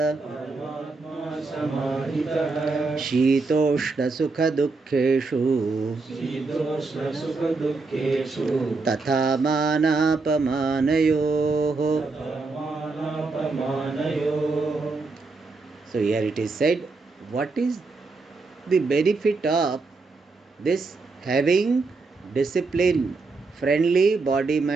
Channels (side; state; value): left; quieter; 3.9 dB